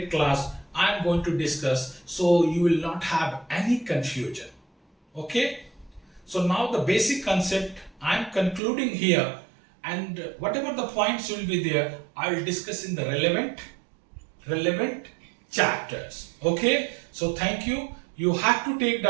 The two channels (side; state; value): left; drops out; at 8.6 s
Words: class I am going to discuss, so you will not have any confusion. Okay, so now the basic concept I am concluding here, and whatever the points will be there, I will discuss in the relevant chapters. Okay, so thank you. You have to take